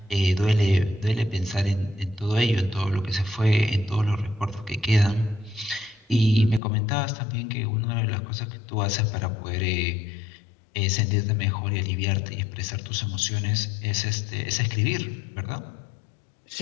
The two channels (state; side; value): drops out; right; at 6.6 s